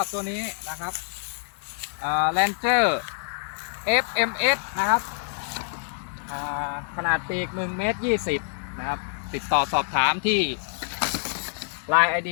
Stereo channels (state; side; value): silent; right; 61 dB below the other